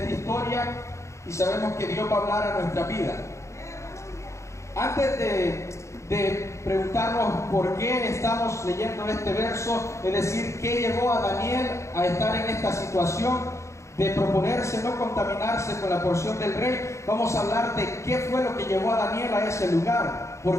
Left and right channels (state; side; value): late; right; 0.14 ms